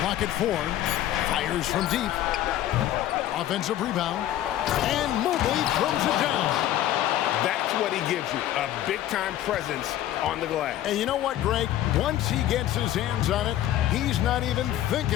at 4. Fires from deep. Offensive rebound. And Mobley throws it down. That's what he gives you, a big-time presence on the glass. And you know what, Greg? Once he gets his hands on it, he's not even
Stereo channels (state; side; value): quieter; right; 12.8 dB